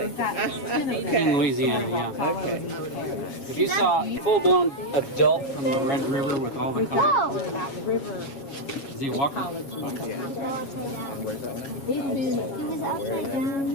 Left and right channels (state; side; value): late; right; 7.3 ms